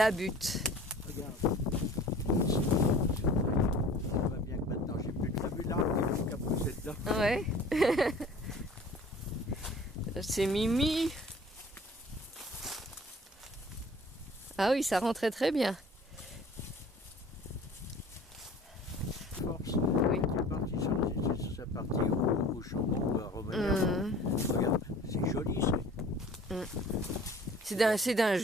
butte. Regarde. Ça va bien que maintenant j'ai plus de vue là, il faut qu'à pousser dedans. Ouais. C'est Mimi. Ah oui, ça rentrait très bien. Force. Oui. C'est parti sur sa partie au chambon ou à revenir. Regarde, c'est joli ça. C'est d'un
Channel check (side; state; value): both; normal; correlation 0.47